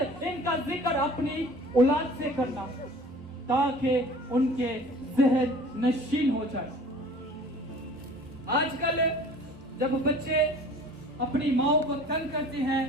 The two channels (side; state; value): both; normal; correlation 0.46